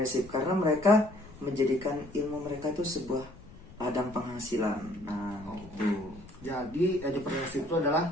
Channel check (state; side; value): noise; left; rumble, 20 dB below the sound